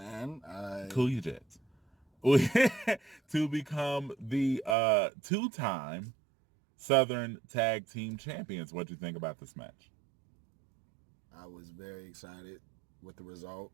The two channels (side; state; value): left; drops out; at 4.8 s